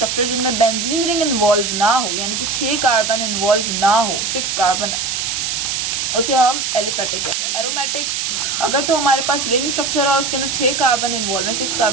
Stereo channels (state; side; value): noise; right; hiss, 1 dB below the sound